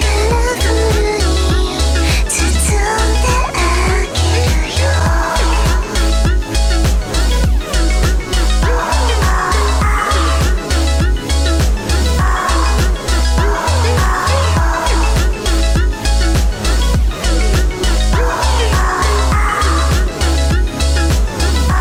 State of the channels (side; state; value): both; identical; correlation 1.00